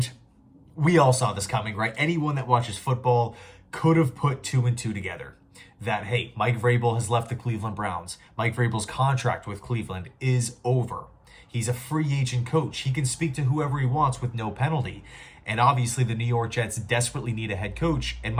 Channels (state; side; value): identical; both; correlation 1.00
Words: we all saw this coming, right? Anyone that watches football could have put two and two together. That, hey, Mike Vrabel has left the Cleveland Browns. Mike Vrabel's contract with Cleveland is over. He's a free agent coach. He can speak to whoever he wants with no penalty. And obviously, the New York Jets desperately need a head coach. And